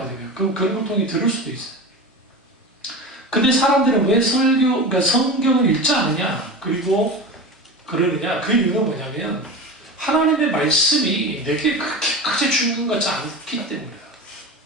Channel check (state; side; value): normal; both; correlation 0.27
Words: 그런 걸 통해 들을 수도 있어요. 근데 사람들은 왜 그러니까 성경을 읽지 않느냐, 그리고 그러느냐? 그 이유는 뭐냐면 하나님의 말씀이 내게 그렇게 중요한 것 같지 않기 때문이에요.